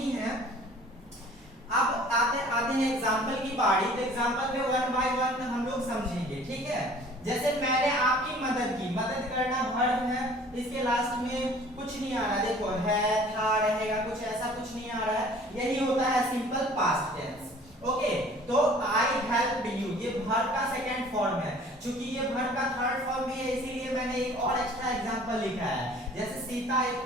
है। अब आते हैं एग्जांपल की बारी, तो एग्जांपल में वन बाय वन हम लोग समझेंगे। ठीक है, जैसे मैंने आपकी मदद की, मदद करना वर्ब है, इसके लास्ट में कुछ नहीं आ रहा। देखो है, था, रहेगा, कुछ ऐसा कुछ नहीं आ रहा है, यही होता है सिंपल पास्ट टेंस। ओके, तो आई हेल्प्ड यू, ये वर्ब का सेकंड फॉर्म है। चूंकि ये वर्ब का थर्ड फॉर्म है इसीलिए मैंने एक और एक्स्ट्रा एग्जांपल लिखा है। जैसे सीता एक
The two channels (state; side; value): normal; both; correlation 0.50